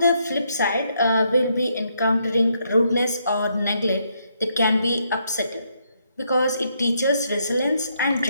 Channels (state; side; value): inverted; both; correlation -0.75